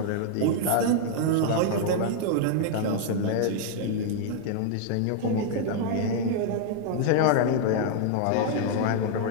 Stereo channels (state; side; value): different; both; correlation -0.01